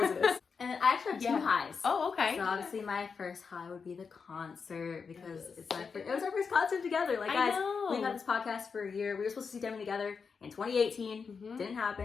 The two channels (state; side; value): quieter; right; 5.5 dB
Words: And I actually have 2 highs. Oh, okay. So obviously my first high would be the concert because it was our first concert together. Like guys, we've had this podcast for a year. We were supposed to see Demi together in 2018. Didn't